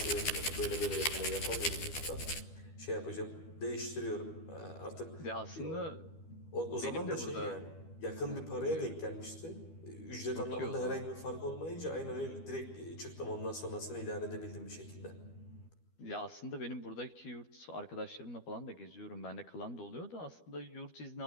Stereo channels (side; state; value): right; late; 12 ms